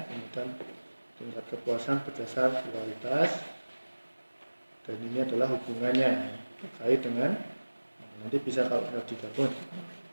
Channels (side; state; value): both; inverted; correlation -1.00